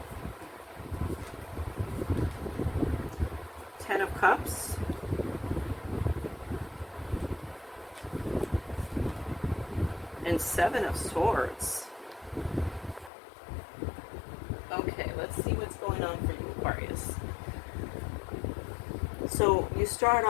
Ten of Cups, and Seven of Swords. Okay, let's see what's going on for you, Aquarius. So you start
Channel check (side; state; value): right; drops out; at 13.1 s